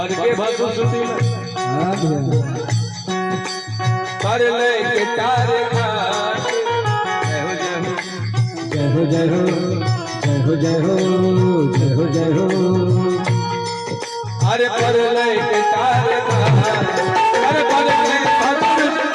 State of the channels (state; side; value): identical; both; correlation 1.00